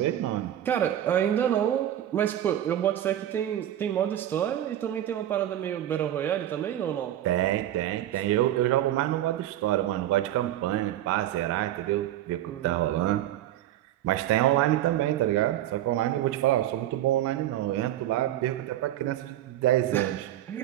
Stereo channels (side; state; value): left; quieter; 12.4 dB